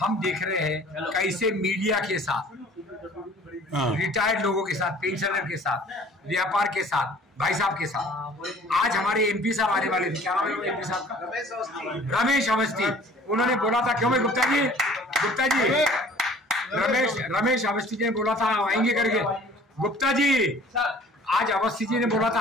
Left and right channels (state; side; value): normal; both; correlation 0.51